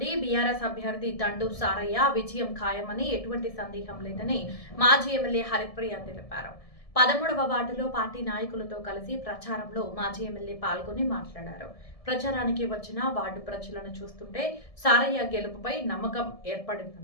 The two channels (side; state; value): right; late; 1.7 ms